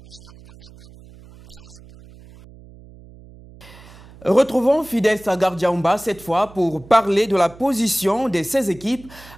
avec 13 points. Retrouvons Fidel Stalgar Djaoumba cette fois pour parler de la position de ces équipes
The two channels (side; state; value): right; noise; hum, 21 dB below the sound